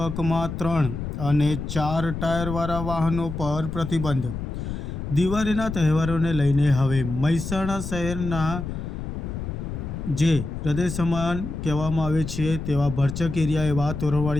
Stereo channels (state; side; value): noise; left; rumble, 6 dB below the sound